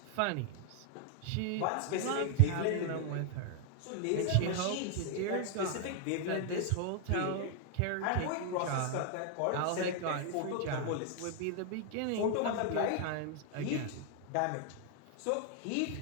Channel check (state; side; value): different; both; correlation 0.00